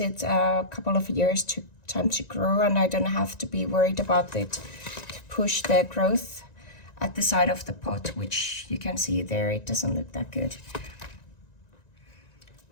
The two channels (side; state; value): right; late; 1.9 ms